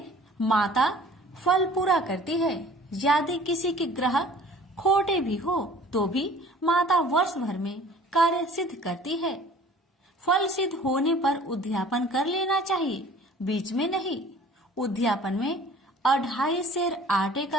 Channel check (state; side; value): normal; both; correlation 0.49